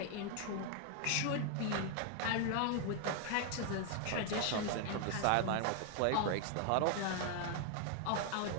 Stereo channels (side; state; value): both; different; correlation 0.00